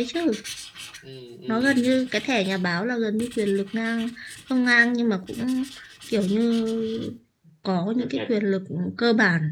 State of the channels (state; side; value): identical; both; correlation 1.00